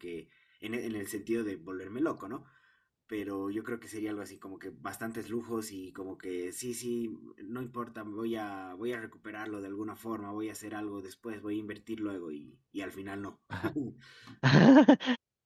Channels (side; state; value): both; identical; correlation 1.00